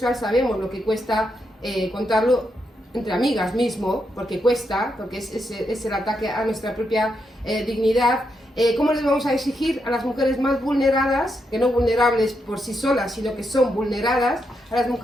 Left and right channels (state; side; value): normal; both; correlation 0.82